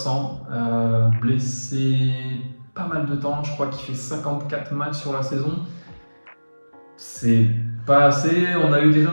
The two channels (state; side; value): inverted; both; correlation -1.00